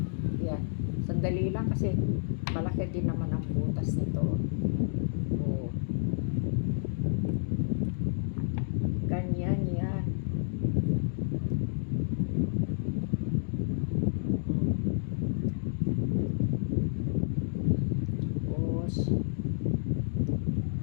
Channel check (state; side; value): silent; right; digital silence